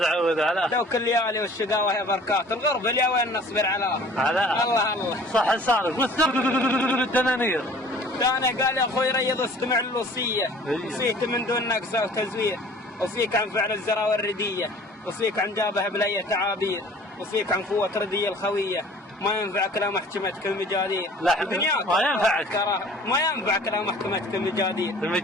لو كل ليالي والشقاوة هي بركات الغرب اليا وين نصبر علاها الله صح صارف والدنانير انا قال يا اخوي ريض استمع للوصية وصيت من دون نقصة وتزوير وصيك عن فعل الزرا والردية وصيك عن جابه بلية تعابير وصيك عن قوة ردية الخوية ما ينفعك لا محكمتك المجادير دنياك ما ينفعك لا محكمتك المجادير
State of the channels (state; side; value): normal; both; correlation 0.49